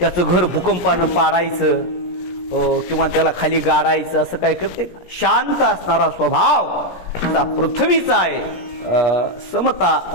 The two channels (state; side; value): late; right; 17 ms